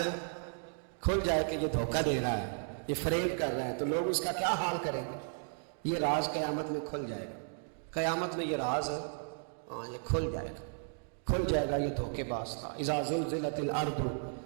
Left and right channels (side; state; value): left; silent; 55 dB below the other